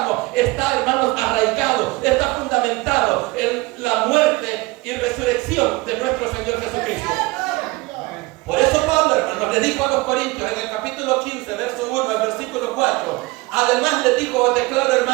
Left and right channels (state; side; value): quieter; left; 22.3 dB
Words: está, hermanos, arraigado, está fundamentado en la muerte y resurrección de nuestro Señor Jesucristo. Por eso Pablo, hermanos, le dijo a los corintios en el capítulo 15, verso 1 al versículo 4: además les dijo: os declaro,